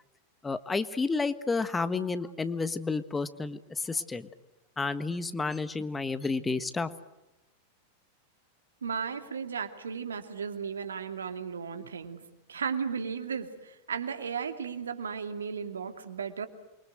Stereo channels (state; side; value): normal; both; correlation 0.35